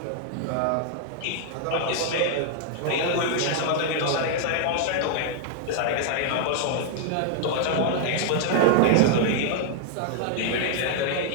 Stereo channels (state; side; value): different; both; correlation 0.00